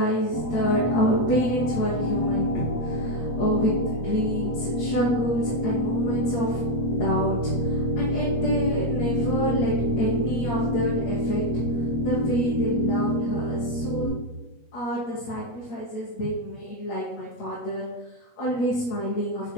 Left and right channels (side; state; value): right; late; 8.3 ms